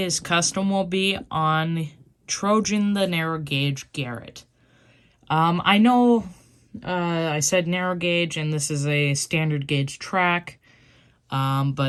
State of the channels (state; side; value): identical; both; correlation 1.00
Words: custom will be on Trojan the narrow gauge Garrett. I know I said narrow gauge, and this is a standard gauge track,